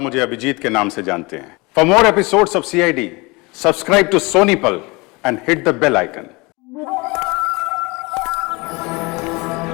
मुझे अभिजीत के नाम से जानते हैं। For more episodes of CID, subscribe to SonyLIV and hit the bell icon.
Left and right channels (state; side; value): quieter; right; 25.7 dB